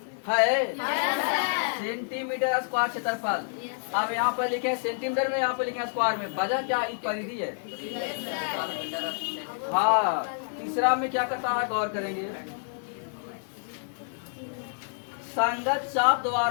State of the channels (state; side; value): silent; right; digital silence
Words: है। सेंटीमीटर स्क्वायर क्षेत्रफल। अब यहाँ पर लिखे सेंटीमीटर में, यहाँ पर लिखे स्क्वायर में। वजह क्या इस परिधि है। हाँ, तीसरा में क्या करता है गौर करेंगे। संगत चाप